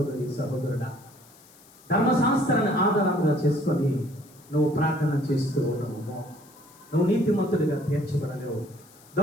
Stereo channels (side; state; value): left; noise; hiss, 25 dB below the sound